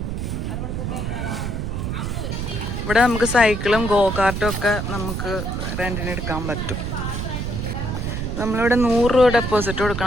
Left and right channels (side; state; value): right; noise; rumble, 3 dB below the sound